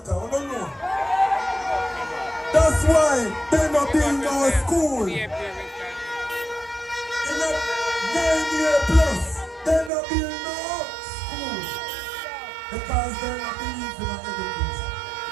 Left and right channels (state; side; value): drops out; left; at 9.9 s